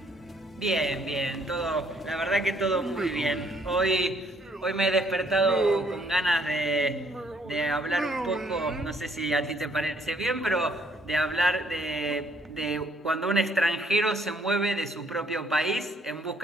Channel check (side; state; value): both; normal; correlation 0.66